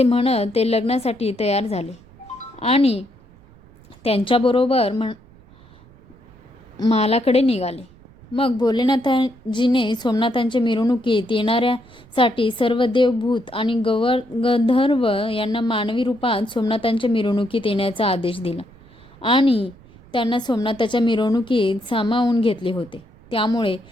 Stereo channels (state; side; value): noise; right; rumble, 25 dB below the sound